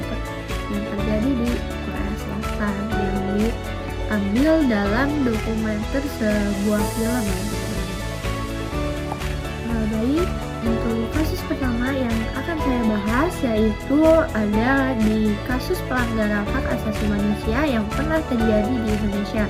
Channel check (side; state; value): both; identical; correlation 1.00